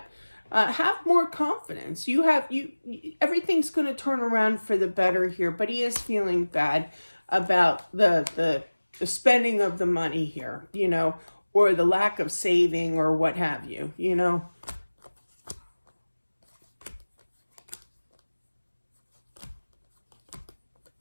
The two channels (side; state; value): both; inverted; correlation -1.00